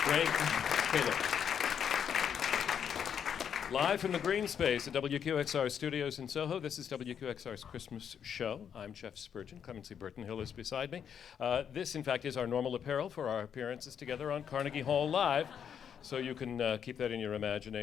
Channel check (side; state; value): right; quieter; 8.1 dB